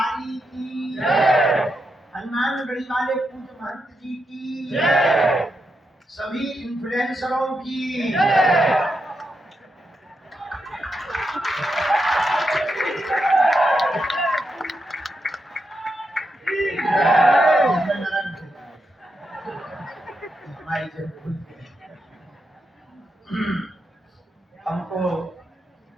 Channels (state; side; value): normal; both; correlation 0.85